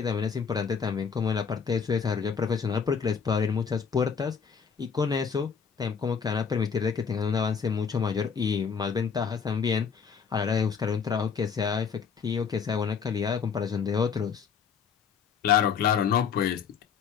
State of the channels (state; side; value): quieter; right; 6.4 dB